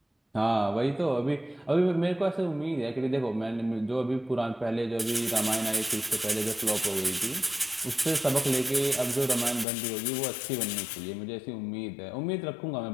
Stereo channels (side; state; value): right; drops out; at 9.7 s